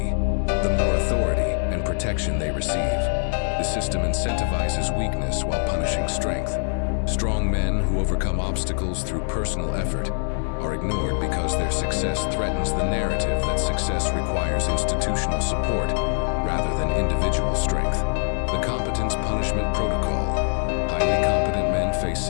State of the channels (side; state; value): right; silent; digital silence